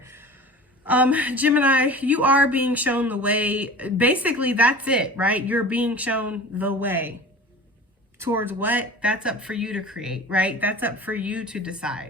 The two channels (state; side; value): normal; both; correlation 0.38